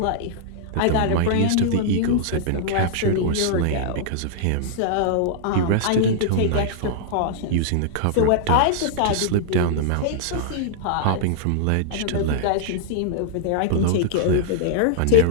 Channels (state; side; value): different; both; correlation -0.02